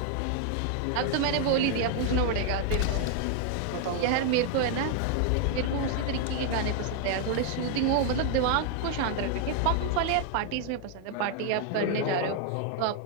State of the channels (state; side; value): different; both; correlation 0.00